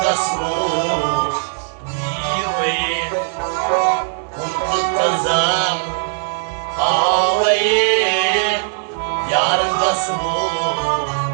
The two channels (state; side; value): silent; left; digital silence